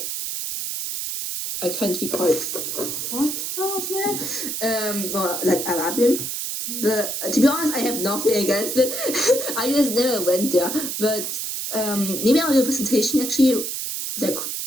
a country called what else, man? Or like Arabian. But to be honest, I have nothing against it. I just never went there. But maybe I'll do a presentation actually, like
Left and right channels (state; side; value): noise; right; hiss, 3 dB below the sound